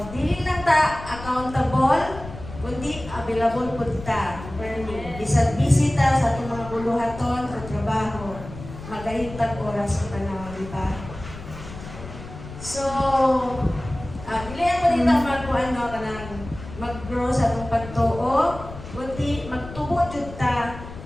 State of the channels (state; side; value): noise; left; rumble, 13 dB below the sound